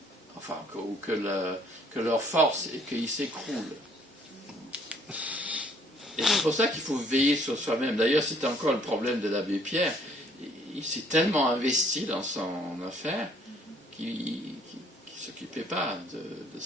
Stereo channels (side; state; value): both; normal; correlation 0.61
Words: enfin, que leur force, et qu'ils s'écroulent. Et c'est pour ça qu'il faut veiller sur soi-même. D'ailleurs, c'était encore le problème de l'abbé Pierre. Il s'est tellement investi dans son affaire qu'il ne s'occupait pas de